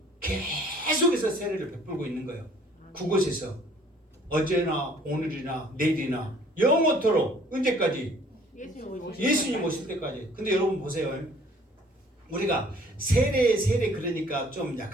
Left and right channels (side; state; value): both; normal; correlation 0.56